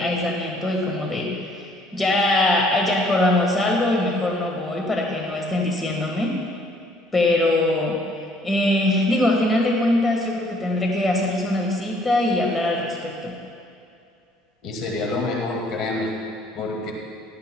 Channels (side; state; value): both; normal; correlation 0.62